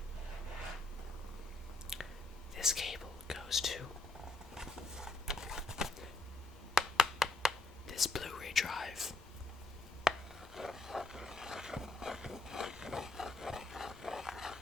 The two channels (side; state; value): right; quieter; 3.0 dB